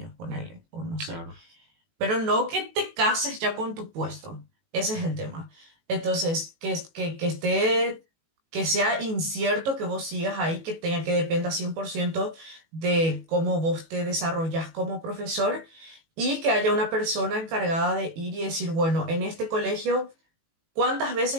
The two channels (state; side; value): late; left; 18 ms